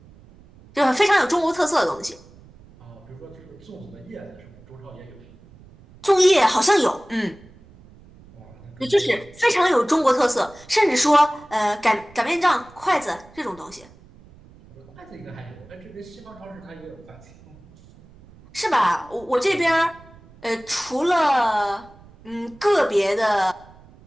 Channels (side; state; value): right; noise; rumble, 24 dB below the sound